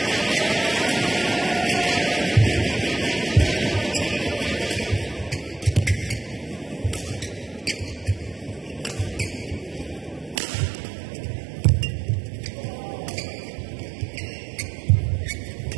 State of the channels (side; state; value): left; drops out; at 10.4 s